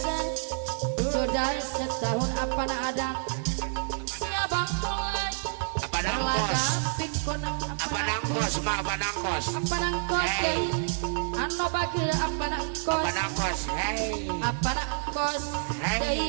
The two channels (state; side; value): silent; left; 59 dB below the other